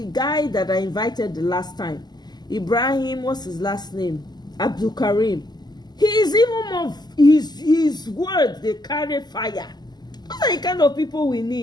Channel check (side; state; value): right; late; 0.20 ms